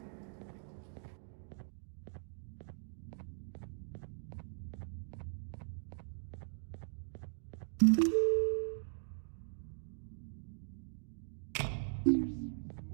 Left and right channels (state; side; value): silent; left; digital silence